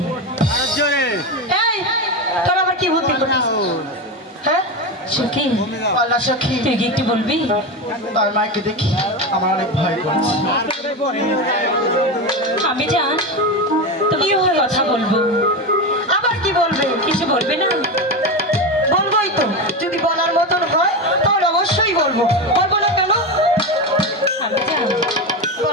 এই তোর আবার কি বুদ্ধি করছিস? হ্যাঁ সখী, আল্লাহ সখী, তুই কি একটু বলবি? তার মাকে দেখি আমার অনেক ভয় করছে। আমি জান তুমি কথা বলবো। আবার কি বলবে? কিছু বলবে না? বলবোই তো, যদি বলার মতন হয় তাহলে অবশ্যই বলবো। বলবো না কেন? আমি জান,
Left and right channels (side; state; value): both; normal; correlation 0.17